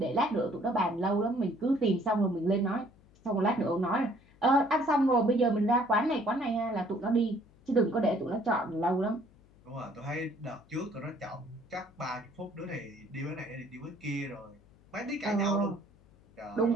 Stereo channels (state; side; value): noise; left; hum, 28 dB below the sound